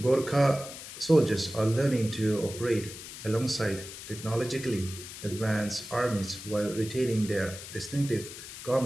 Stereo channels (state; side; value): noise; left; hiss, 12 dB below the sound